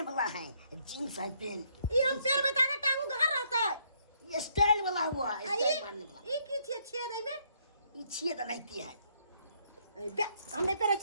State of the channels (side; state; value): both; inverted; correlation -0.70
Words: वाला है, जींस है, पेंट। ई हम पैर में ताने टांगू घर रहता है। ये स्टाइल वाला हुआ, स्टाइल मारने वाला। ई की छियै? छेद में ये छेद नहीं है। बे हमने पेरे